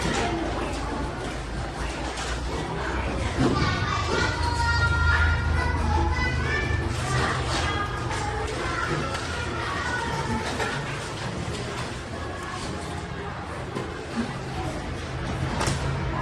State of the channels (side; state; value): both; identical; correlation 1.00